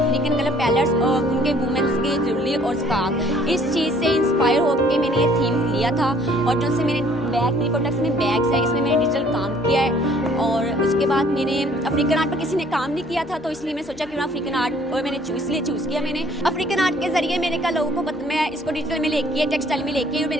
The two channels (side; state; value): both; normal; correlation 0.58